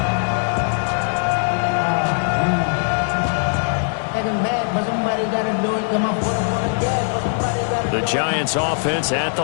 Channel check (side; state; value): right; silent; digital silence